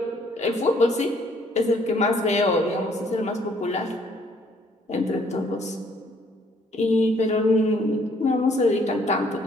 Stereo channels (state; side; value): normal; both; correlation 0.64